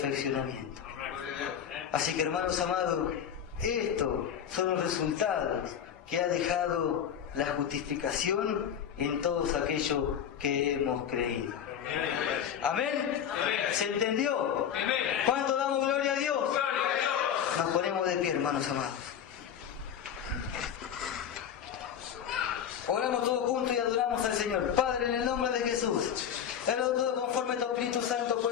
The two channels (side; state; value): right; quieter; 8.8 dB